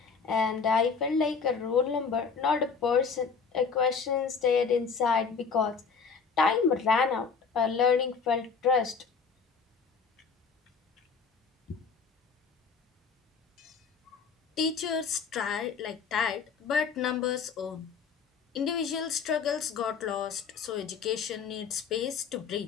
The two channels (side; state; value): right; quieter; 5.5 dB